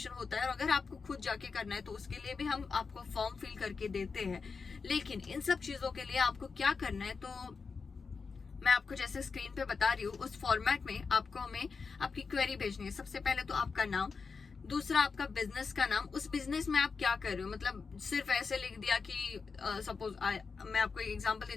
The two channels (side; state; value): right; quieter; 5.0 dB